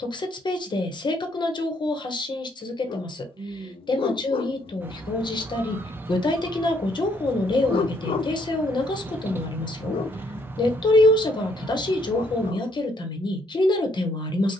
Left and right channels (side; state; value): both; normal; correlation 0.69